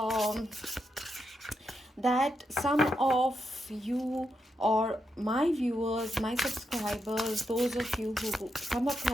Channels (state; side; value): normal; both; correlation 0.83